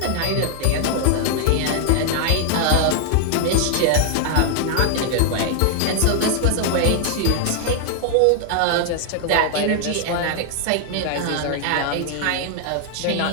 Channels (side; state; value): both; different; correlation 0.00